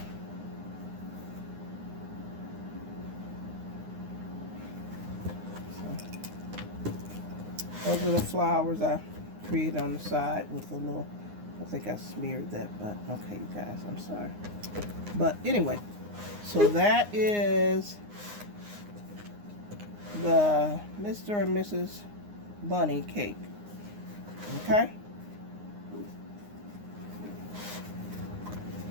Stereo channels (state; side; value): late; left; 9.7 ms